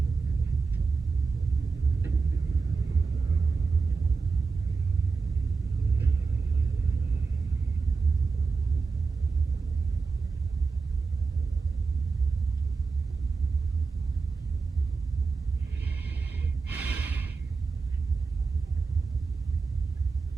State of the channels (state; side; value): quieter; left; 4.6 dB